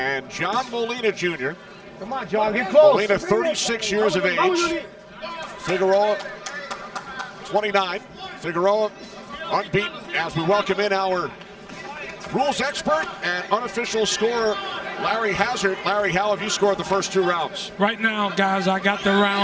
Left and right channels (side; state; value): both; identical; correlation 1.00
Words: John Molina Jr. Come on, John, get close. Molina, 36 years of age. Figueroa, 29. Figueroa, unbeaten, as we welcome in our rules expert and unofficial scorer, Larry Hazard. Larry, how have you scored the first 2 rounds? Right now, guys, I got